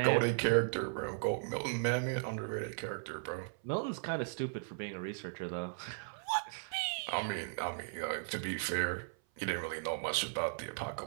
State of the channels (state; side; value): silent; left; 53 dB below the other